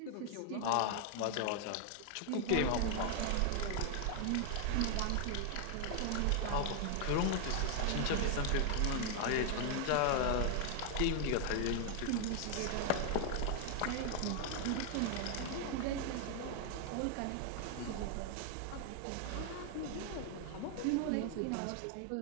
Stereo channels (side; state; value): both; different; correlation 0.00